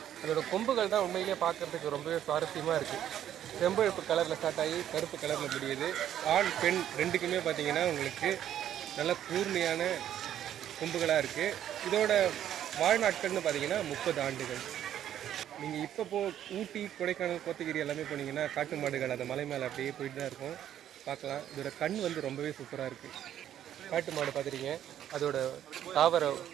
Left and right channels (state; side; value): quieter; left; 10.9 dB